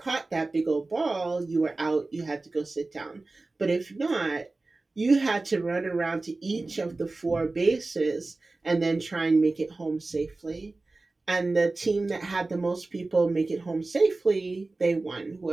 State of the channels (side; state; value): left; quieter; 3.3 dB